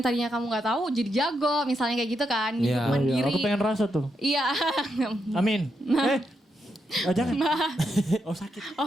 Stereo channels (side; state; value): both; normal; correlation 0.82